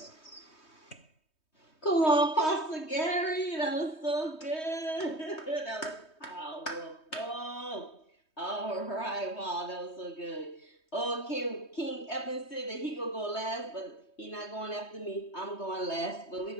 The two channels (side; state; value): right; late; 3.2 ms